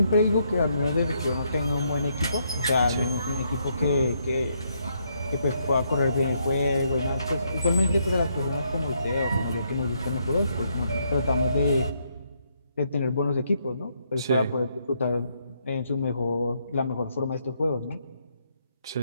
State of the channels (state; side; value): inverted; both; correlation -0.75